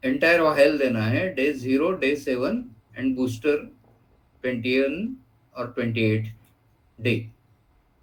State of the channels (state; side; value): identical; both; correlation 1.00